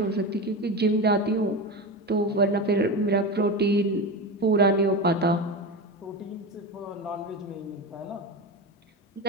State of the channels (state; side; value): normal; both; correlation 0.21